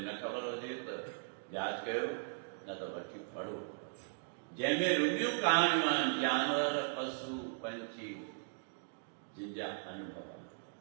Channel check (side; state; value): left; silent; digital silence